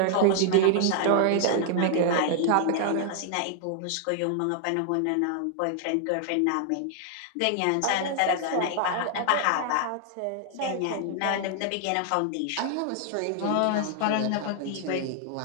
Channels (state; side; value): different; both; correlation 0.00